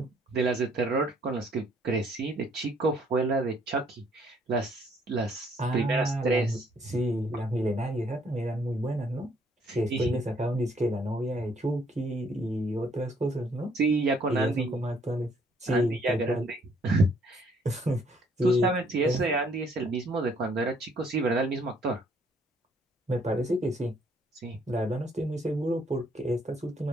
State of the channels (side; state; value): both; normal; correlation 0.65